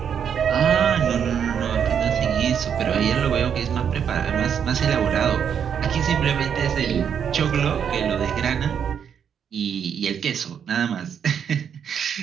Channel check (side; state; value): left; quieter; 7.9 dB